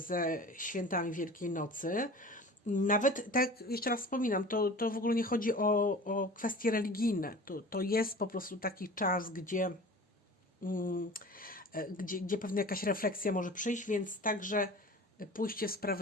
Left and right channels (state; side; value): normal; both; correlation 0.39